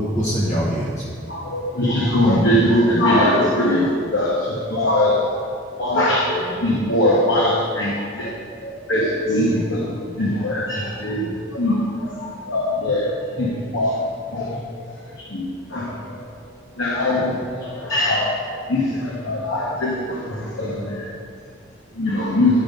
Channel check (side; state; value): both; normal; correlation 0.29